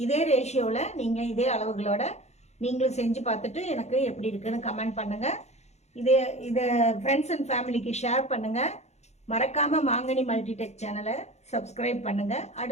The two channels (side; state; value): right; late; 0.32 ms